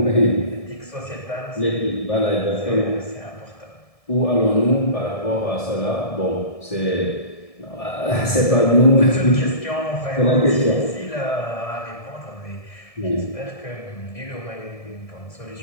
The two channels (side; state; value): right; late; 1.7 ms